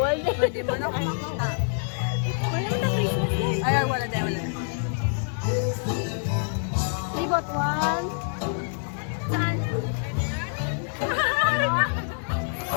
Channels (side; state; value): right; silent; 61 dB below the other